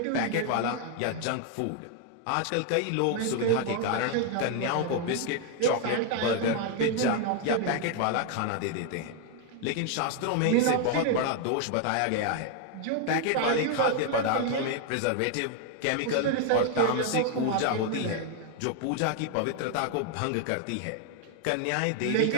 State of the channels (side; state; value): both; different; correlation 0.00